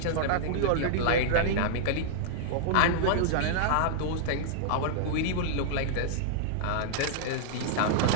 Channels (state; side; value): different; both; correlation -0.01